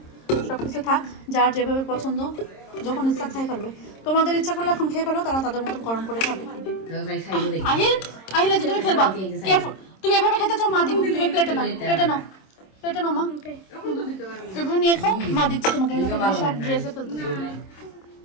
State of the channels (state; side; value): late; right; 26 ms